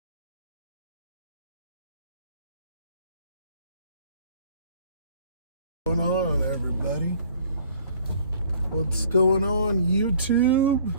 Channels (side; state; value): both; inverted; correlation -0.54